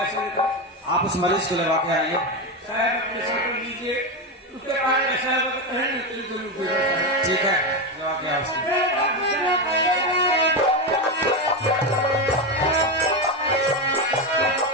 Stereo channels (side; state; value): both; normal; correlation 0.13